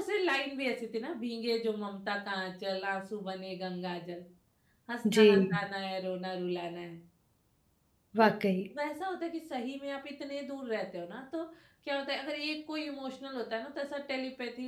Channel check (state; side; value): identical; both; correlation 1.00